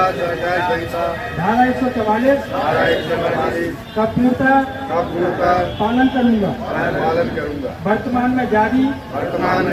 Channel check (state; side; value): identical; both; correlation 1.00